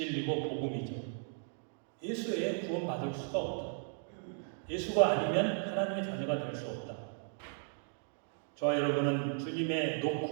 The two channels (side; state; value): left; silent; 54 dB below the other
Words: 복음이죠. 예수 외에 구원받을 수가 없다. 예수가 아니면 하나님의 자녀가 될 수 없다. 저와 여러분은 주님의